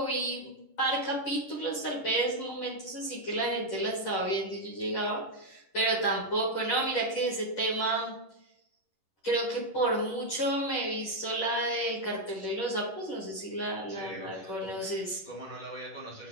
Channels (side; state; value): right; late; 10 ms